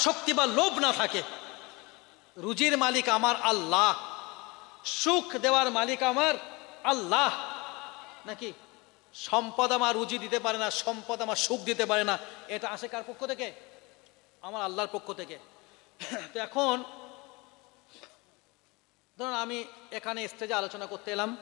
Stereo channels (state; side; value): quieter; right; 25.5 dB